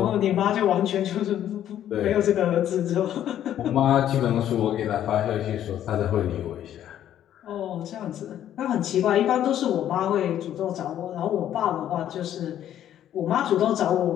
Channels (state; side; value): quieter; right; 11.1 dB